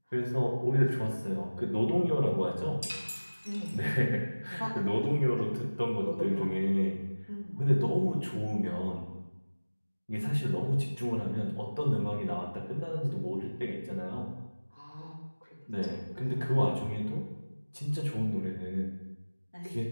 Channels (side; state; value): both; inverted; correlation -1.00